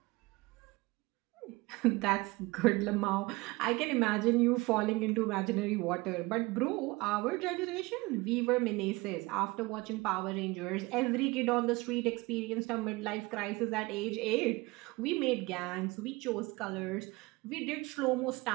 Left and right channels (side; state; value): left; quieter; 23.2 dB